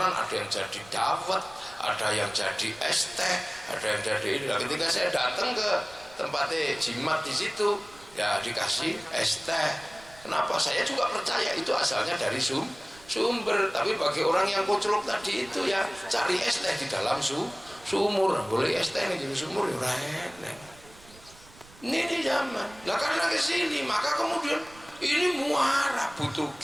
ada yang jadi dawet, ada yang jadi es teh, ada yang jadi ini. Nah, ketika saya datang ke tempatnya jimat di situ, ya dikasih es teh. Kenapa? Saya juga percaya itu asalnya dari sumber. Tapi bagi orang yang koclok tadi itu ya cari es teh di dalam sumur. Boleh es teh di sumur ya enak. Ini zaman. Nah karena kesini maka kemudian ini muara, butuh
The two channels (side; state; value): right; noise; rumble, 23 dB below the sound